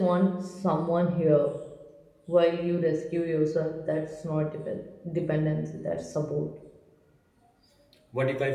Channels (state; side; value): identical; both; correlation 1.00